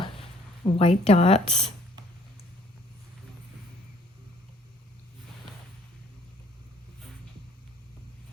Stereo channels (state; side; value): normal; both; correlation 0.59